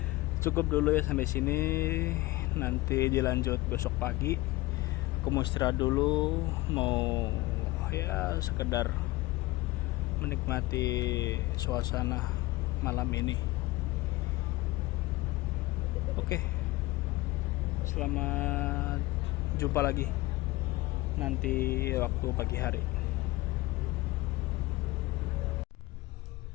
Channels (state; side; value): quieter; right; 19.9 dB